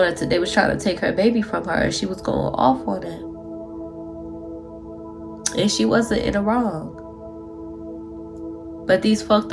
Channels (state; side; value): identical; both; correlation 1.00